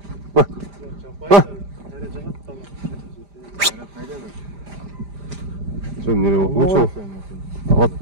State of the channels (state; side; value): late; left; 5.0 ms